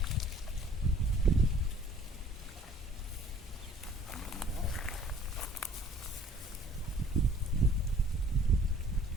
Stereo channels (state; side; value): normal; both; correlation 0.53